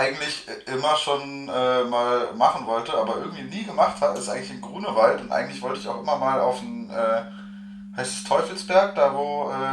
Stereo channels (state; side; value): identical; both; correlation 1.00